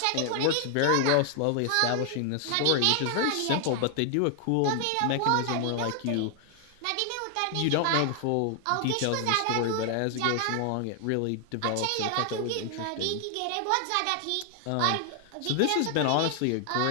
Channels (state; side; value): different; both; correlation 0.00